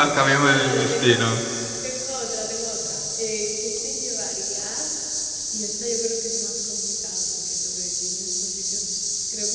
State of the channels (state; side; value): identical; both; correlation 1.00